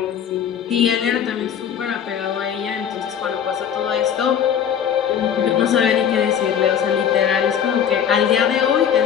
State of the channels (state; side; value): quieter; right; 8.5 dB